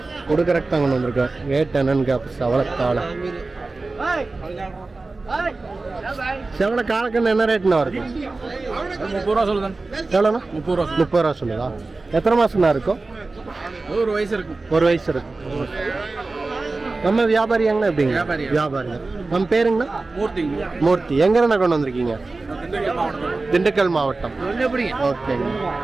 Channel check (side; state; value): left; quieter; 3.5 dB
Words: கொடுக்கறக்கு தான் கொண்டு வந்திருக்கேன். ரேட் என்னன்னு சவளக்காளை. செவல காலக்கண்ணு என்ன ரேட்னா வருது? 30 ரூபா சொல்லுதான். எவ்வளோண்ணா? 30 ரூபா. 30 ரூபா சொல்லுதா? எத்தனை மாசம்னா இருக்கும்? ஒரு வயசு இருக்கும். 1 வயசு இருக்கும். நம்ம வியாபாரியாங்கண்ணா? எப்படிங்க? வியாபாரிங்க. நம்ம பேருங்கண்ணா? மூர்த்தி. எங்கண்ணா கொண்டு வந்திருக்கீங்க? திண்டுக்கல் மாவட்டம். ஓகேங்க.